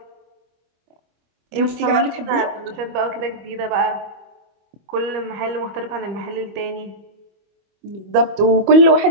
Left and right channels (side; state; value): left; late; 25 ms